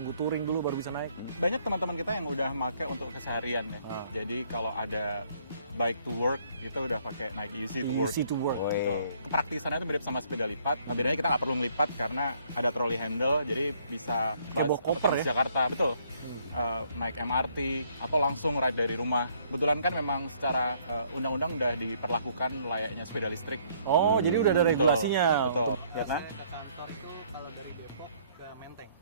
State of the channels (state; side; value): inverted; both; correlation -0.64